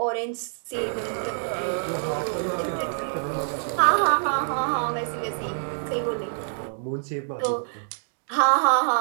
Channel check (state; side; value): silent; left; digital silence